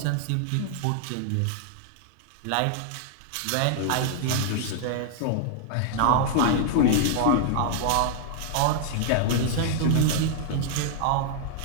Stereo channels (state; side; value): different; both; correlation 0.00